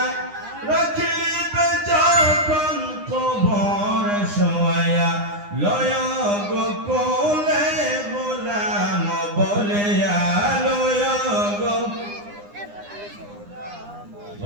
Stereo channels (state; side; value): late; left; 9.8 ms